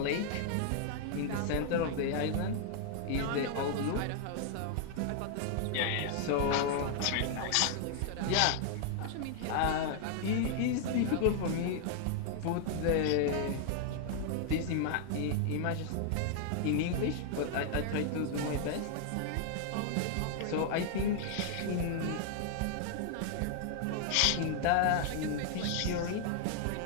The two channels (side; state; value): both; different; correlation 0.00